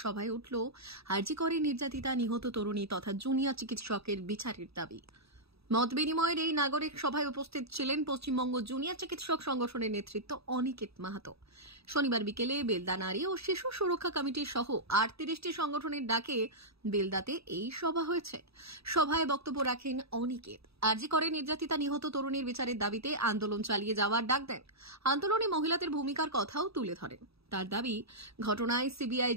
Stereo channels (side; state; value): left; late; 0.77 ms